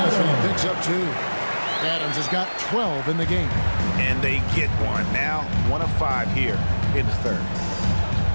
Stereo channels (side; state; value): both; inverted; correlation -1.00